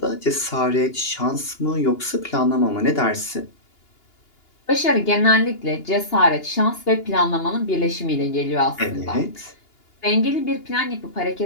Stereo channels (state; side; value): late; right; 2.8 ms